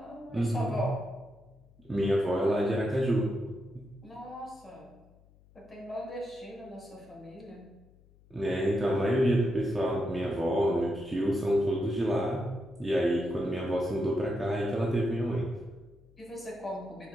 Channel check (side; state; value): left; noise; hum, 27 dB below the sound